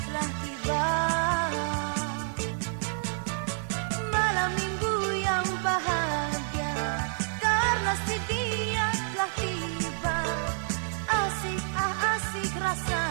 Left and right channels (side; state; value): left; silent; 59 dB below the other